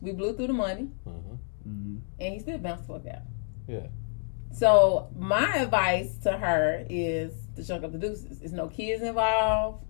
We blew through the money, and he still bounced the fuck out. Yeah. So my advice to her is to chunk up the deuces. There's no kids involved.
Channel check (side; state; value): right; silent; digital silence